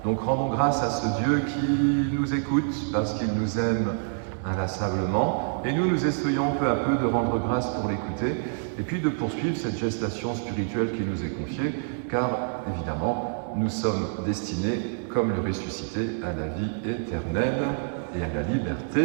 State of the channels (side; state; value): left; silent; digital silence